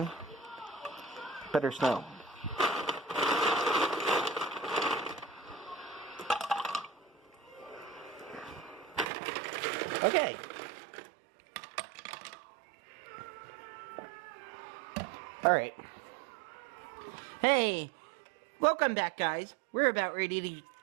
better snow. Okay. Alright. Hey, welcome back, guys. We're about ready to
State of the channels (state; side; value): drops out; left; at 9.1 s